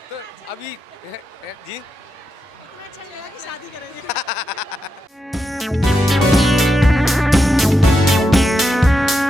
तो अभी। जी अच्छा लगा कि शादी करेंगे।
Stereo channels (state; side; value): normal; both; correlation 0.86